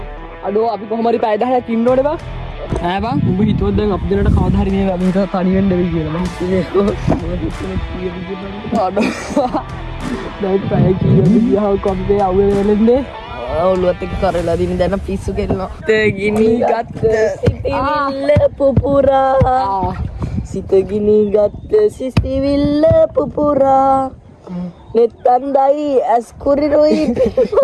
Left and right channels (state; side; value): identical; both; correlation 1.00